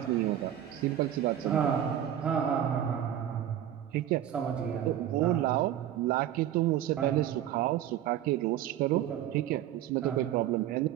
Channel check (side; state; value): left; quieter; 11.3 dB